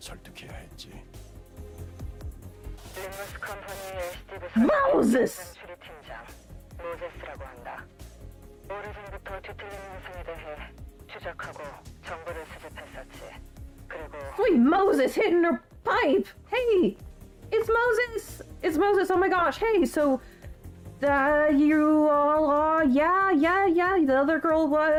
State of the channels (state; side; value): identical; both; correlation 1.00